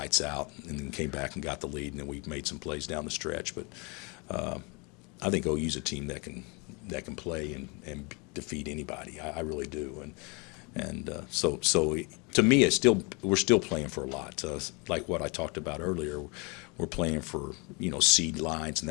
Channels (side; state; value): right; quieter; 29.9 dB